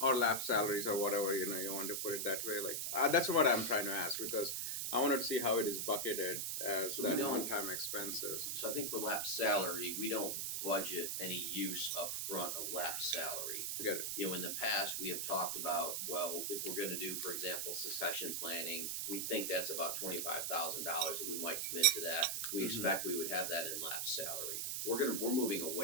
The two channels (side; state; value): right; noise; hiss, 1 dB below the sound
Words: Or lap salaries or whatever, you know, you want to put it that way. Like that's what I'm trying to ask, because I wanted to see how it is bucketed as So we that don't- one-time expenses. so I think for lap salary, we don't budget any use up front of lap salary. I get it. You know, in the past, we have talked about, well, if we're gonna do, for example, succession planning, we think that's about $25,000 that we might commit to that. We expect we would have that in lap salary. We're moving